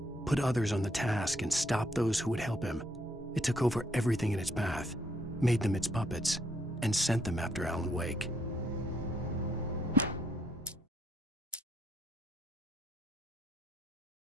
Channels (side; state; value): both; normal; correlation 0.71